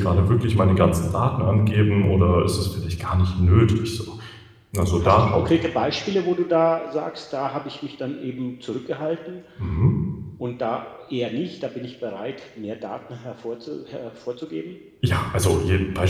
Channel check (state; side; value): identical; both; correlation 1.00